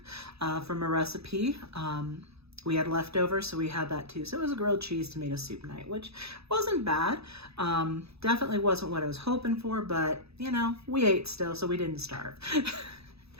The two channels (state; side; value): late; left; 0.78 ms